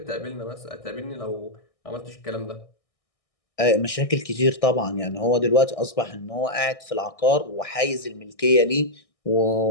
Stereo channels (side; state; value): right; late; 1.6 ms